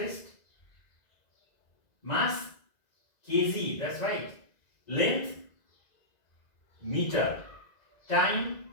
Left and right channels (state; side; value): late; right; 2.0 ms